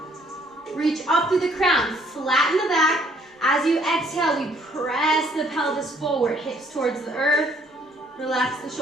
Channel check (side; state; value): both; normal; correlation 0.64